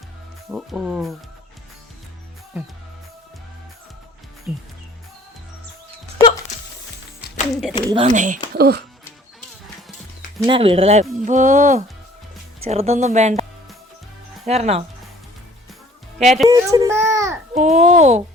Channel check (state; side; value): normal; both; correlation 0.53